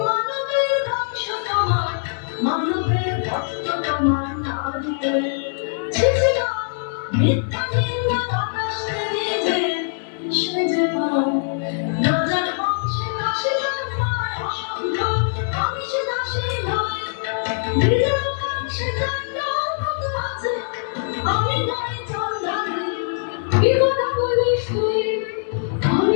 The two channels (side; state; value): right; silent; digital silence